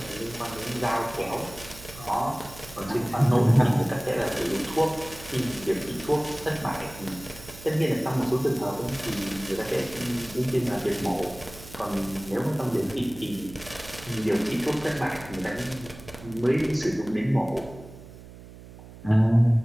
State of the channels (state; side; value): noise; right; hum, 17 dB below the sound